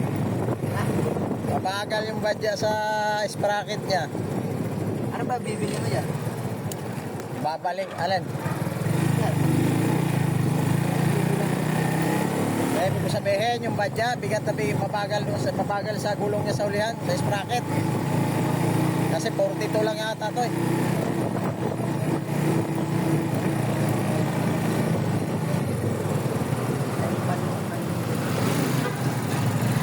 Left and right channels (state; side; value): identical; both; correlation 1.00